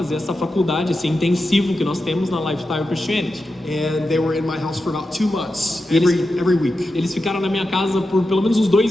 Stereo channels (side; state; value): both; normal; correlation 0.90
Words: essa faculdade, esse intensivo que nós temos na Lifestyle Christianity. And they were in my house for about 2 months, every week. Eles ficaram na minha casa por pelo menos uns